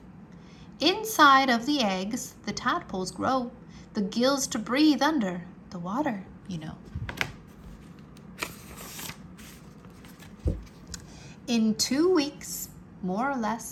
Inside of the eggs, the tadpoles grow, the gills to breathe under the water, you know. In 2 weeks, more or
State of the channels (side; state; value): both; identical; correlation 1.00